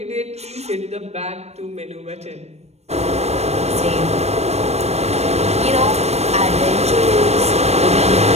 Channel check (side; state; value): left; late; 0.31 ms